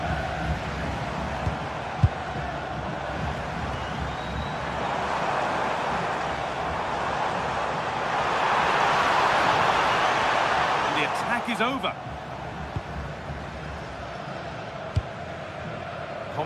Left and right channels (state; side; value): identical; both; correlation 1.00